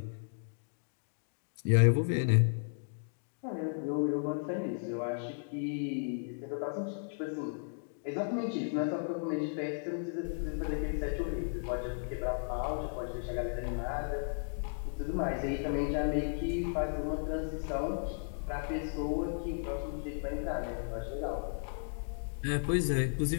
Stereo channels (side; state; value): right; silent; digital silence